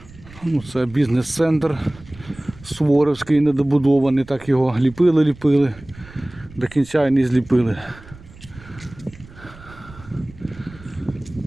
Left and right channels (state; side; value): noise; right; rumble, 20 dB below the sound